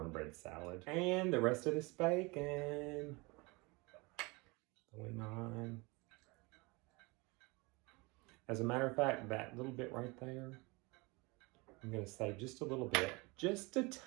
salad. And the rest of this bacon going on. As a matter of fact, that little bit right there, I'm gonna save just a little bit, just a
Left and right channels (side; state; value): left; quieter; 26.0 dB